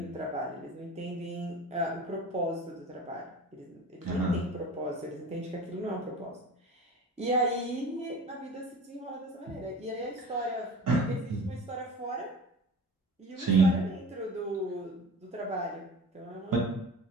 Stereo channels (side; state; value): both; normal; correlation 0.36